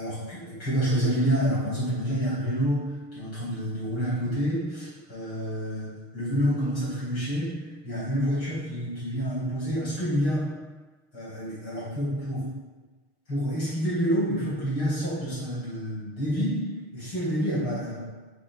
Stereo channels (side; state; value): right; late; 6.5 ms